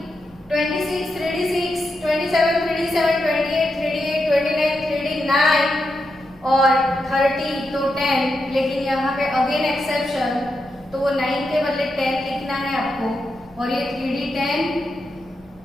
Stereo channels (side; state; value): left; noise; rumble, 28 dB below the sound